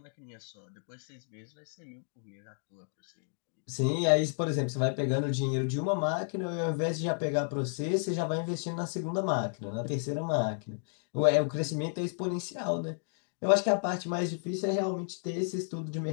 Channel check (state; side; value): silent; right; 56 dB below the other